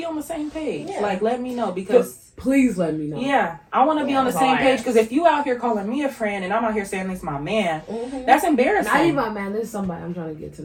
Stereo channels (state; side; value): identical; both; correlation 1.00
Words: on the same page. Yeah. Like let me know, because Please let me know. yeah, I want to be on the that's same all I page, ask. because if you out here calling me a friend and I'm out here saying this is my man, that's embarrassing. Not even my man. This is somebody I'm trying to get to